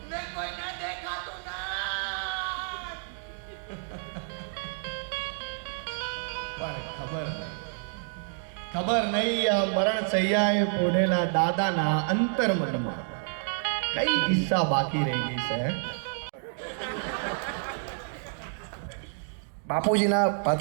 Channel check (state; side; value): silent; left; digital silence